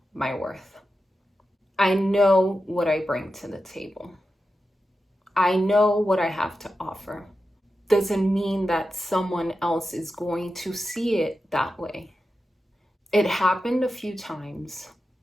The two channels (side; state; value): both; normal; correlation 0.91